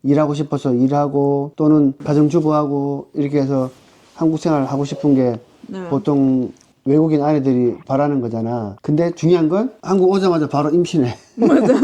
일하고 싶어서 일하고 또는 가정주부하고 이렇게 해서 한국 생활을 하고 싶은 게 네. 보통 외국인 아내들이 바라는 거잖아. 근데 중요한 건 한국 오자마자 바로 임신해.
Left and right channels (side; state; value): both; identical; correlation 1.00